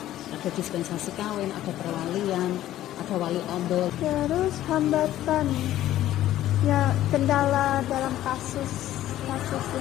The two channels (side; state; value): right; quieter; 13.5 dB